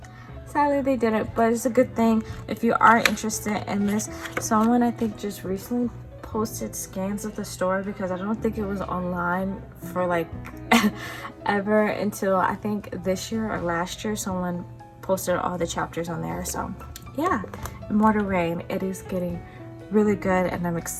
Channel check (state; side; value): identical; both; correlation 1.00